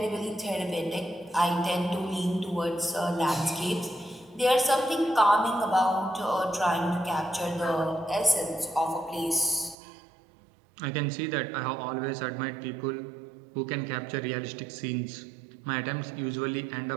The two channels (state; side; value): drops out; left; at 9.8 s